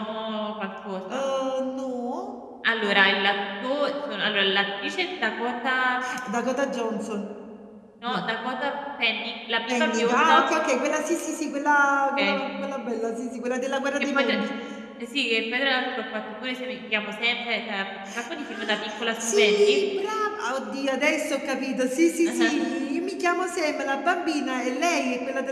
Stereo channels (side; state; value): both; identical; correlation 1.00